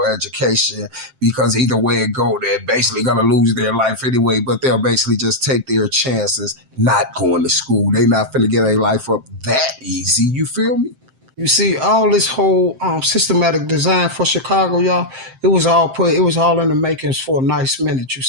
education because either way it go, they're basically gonna lose their life anyway. But they'll basically just take their chances not going to school. They not finna get their life up that easy. You feel me? You see, all this whole systematic design for Chicago, y'all, it was all in the makings for a nice minute. You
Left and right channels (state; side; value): late; left; 7.6 ms